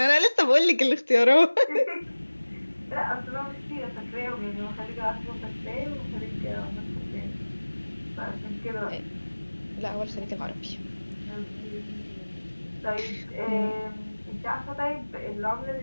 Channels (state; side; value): inverted; both; correlation -1.00